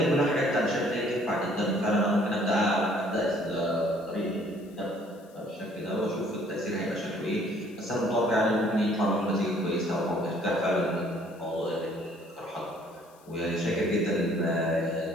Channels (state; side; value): noise; left; hiss, 29 dB below the sound